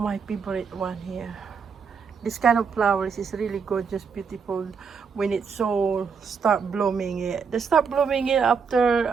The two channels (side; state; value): left; quieter; 5.8 dB